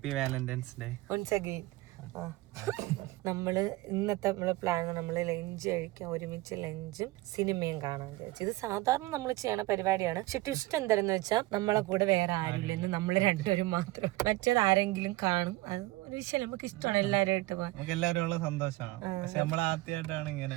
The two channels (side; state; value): left; quieter; 19.3 dB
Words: valentine's day once again. നമ്മള് ഇന്നത്തെ നമ്മളെ പ്ലാൻ നമ്മള് ലഞ്ച് കഴിക്കാൻ, ഒരുമിച്ച് ലഞ്ചും സിനിമയും കാണാൻ വിചാരിച്ചു. ഇത് സാധാരണ നമ്മൾ ചെയ്യണ പരിപാടിയാണ്. പക്ഷെ ട്വിസ്റ്റ് എന്താണെന്ന് വെച്ചാൽ നമ്മളെ കൂടെ വേറെ ആരുമില്ലെന്ന്, നമ്മള് രണ്ടുപേരും മാത്രം. മറ്റേത് ആരെങ്കിലും കാണും. അത് ഒരു വിഷയം നമുക്ക് ഇഷ്ടമാണ് എല്ലാവരുമായിട്ട് പോകാൻ. എല്ലാവരും സന്തോഷമാണ്. പക്ഷെ നമ്മൾ ആദ്യമായിട്ടാണ്